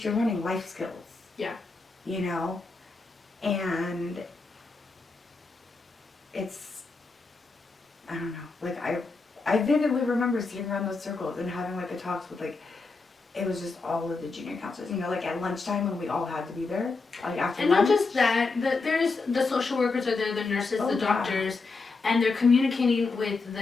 you're learning life skills. Yeah. And it's, I don't know, like I vividly remember sitting around those circles and having like the talks with it was just all of the junior counselors, like at lunchtime when we all had to be there, like after and lunch. not just that, there's the social workers are there, the nurses, Oh, the doctors, and they're communicating with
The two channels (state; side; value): quieter; right; 4.0 dB